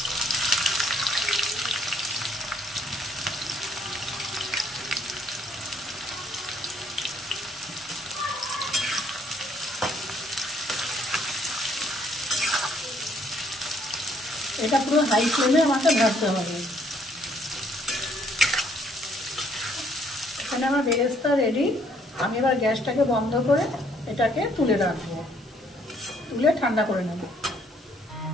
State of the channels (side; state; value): both; normal; correlation 0.66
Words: এটা পুরো হাই ফ্লেমে আমাকে ভাজতে হবে। এখানে আমার বেরেস্তা রেডি। আমি এবার গ্যাসটাকে বন্ধ করে এটাকে তুলে রাখবো, তুলে ঠান্ডা করে নেব।